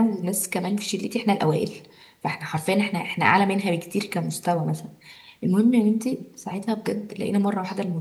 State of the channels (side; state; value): both; identical; correlation 1.00